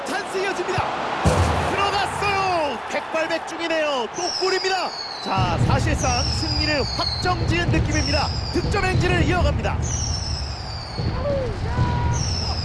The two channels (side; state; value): both; identical; correlation 1.00